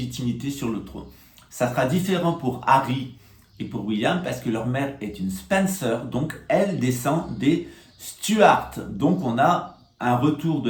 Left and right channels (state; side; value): identical; both; correlation 1.00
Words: sur le trône. Ça sera différent pour Harry et pour William, parce que leur mère est une Spencer, donc elle descend des Stuart. Donc on a un retour de